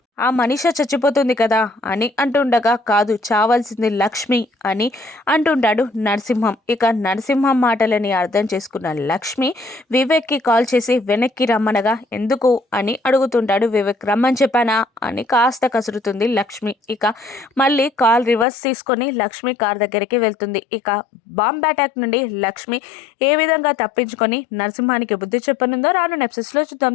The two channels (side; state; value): right; drops out; at 18.4 s